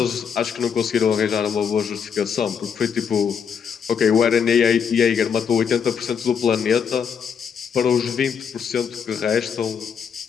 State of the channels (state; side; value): quieter; right; 7.0 dB